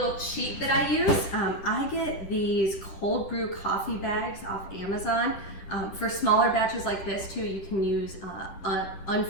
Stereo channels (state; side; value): late; right; 11 ms